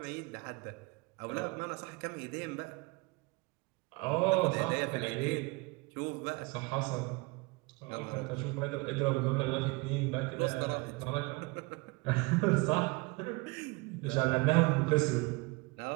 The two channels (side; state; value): left; quieter; 25.7 dB